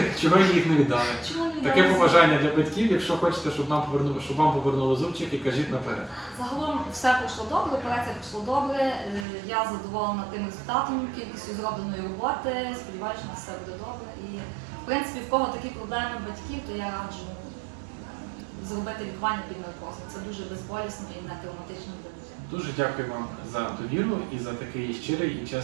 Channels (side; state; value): left; drops out; at 9.2 s